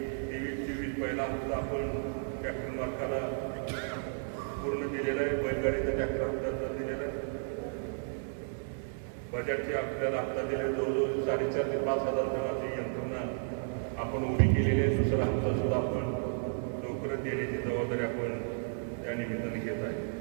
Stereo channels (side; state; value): left; silent; digital silence